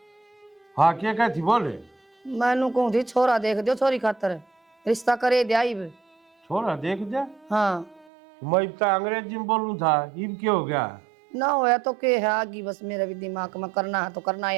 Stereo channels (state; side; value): drops out; left; at 8.1 s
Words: हाँ क्या कहती बोले? मैनू कहूँ थी छोरा देख दो, छोरी खातर रिश्ता करे दिया इब। छोरा देख दे, हाँ मैं इब तक अंग्रेजी में बोलूं था, इब क्या हो गया? ना होया तो के है आगी, बस मेरे भी दिमाग में करना है तो करना है